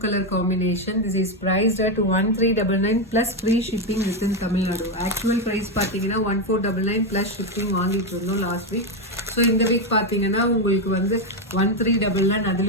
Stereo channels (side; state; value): both; normal; correlation 0.07